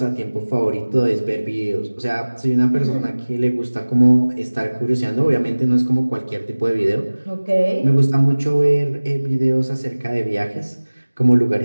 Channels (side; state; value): both; inverted; correlation -1.00